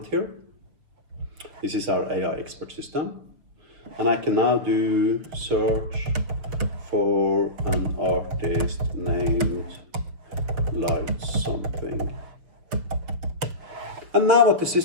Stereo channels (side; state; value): left; late; 6.3 ms